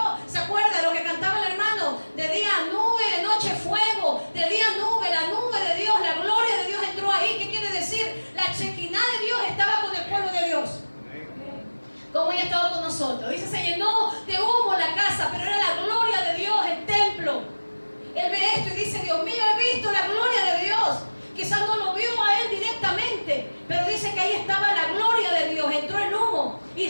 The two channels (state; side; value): inverted; both; correlation -1.00